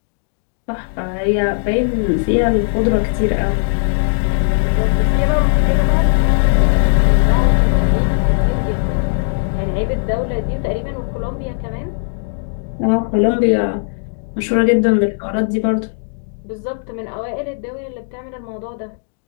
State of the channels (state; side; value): silent; right; digital silence